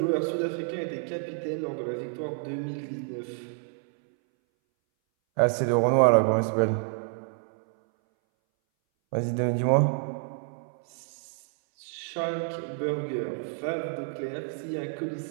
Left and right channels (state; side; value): silent; left; 59 dB below the other